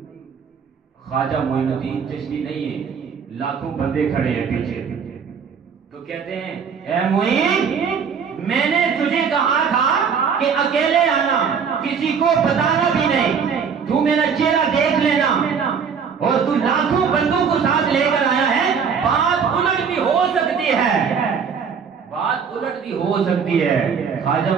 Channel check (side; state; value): left; quieter; 6.5 dB